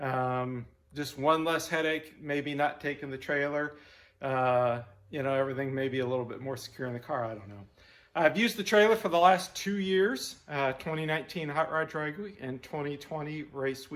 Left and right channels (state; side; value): identical; both; correlation 1.00